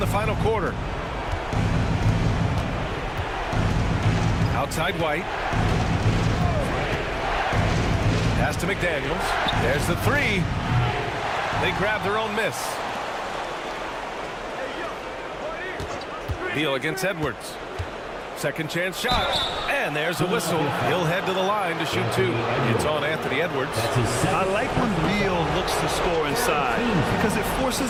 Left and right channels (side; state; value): both; identical; correlation 1.00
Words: final quarter. Outside White. Pass to McDaniels. There's the 3. They grab their own miss. Beal against Edwards. Second chance shot. And there's a whistle. He'll head to the line to shoot 2. It's on Anthony Edwards. I like when Beal looks to score inside because it forces